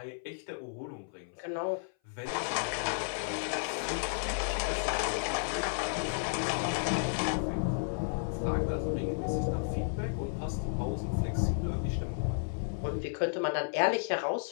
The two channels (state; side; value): silent; right; 56 dB below the other